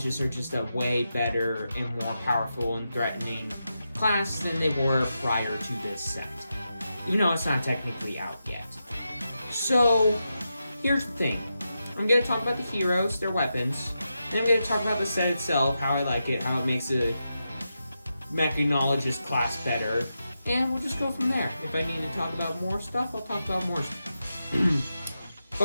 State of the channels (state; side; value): inverted; both; correlation -0.88